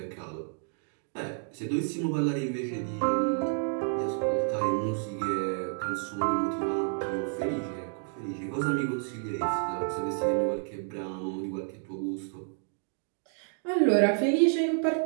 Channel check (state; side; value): silent; left; 58 dB below the other